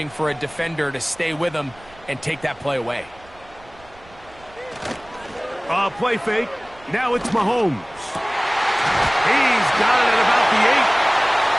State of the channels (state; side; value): noise; right; rumble, 25 dB below the sound